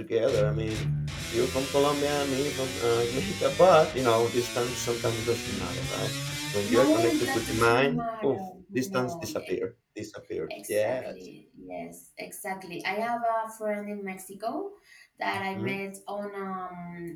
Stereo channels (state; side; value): identical; both; correlation 1.00